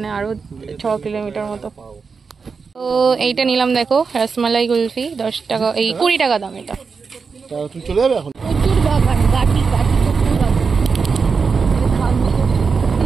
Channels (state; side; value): quieter; left; 5.2 dB